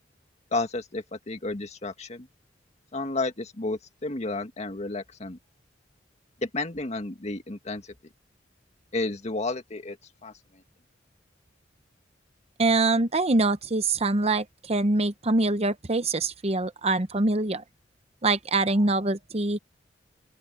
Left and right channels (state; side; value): normal; both; correlation 0.39